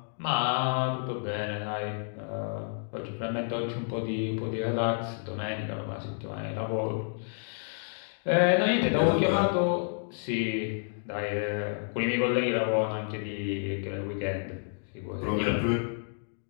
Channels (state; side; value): silent; right; 58 dB below the other